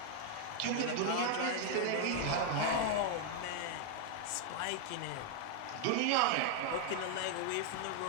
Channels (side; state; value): both; different; correlation 0.00